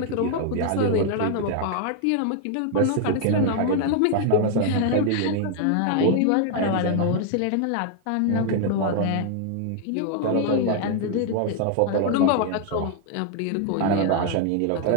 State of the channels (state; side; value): different; both; correlation 0.00